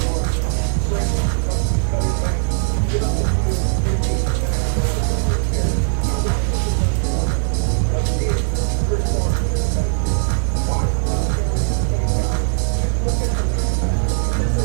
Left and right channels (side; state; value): left; silent; digital silence